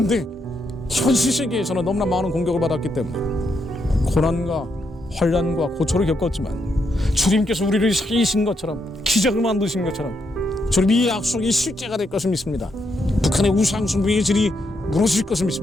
현실 세계에서는 너무나 많은 공격을 받았기 때문에 고난과 환난과 고초를 겪었지만 주님께서 우리를 살리신 것처럼 기적을 만드신 것처럼 주님 이 약속이 실제가 될 것을 믿습니다. 북한의 우상숭배의 질이 무너질 것을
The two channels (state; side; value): normal; both; correlation 0.79